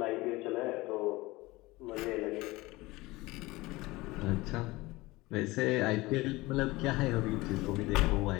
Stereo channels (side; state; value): right; quieter; 20.8 dB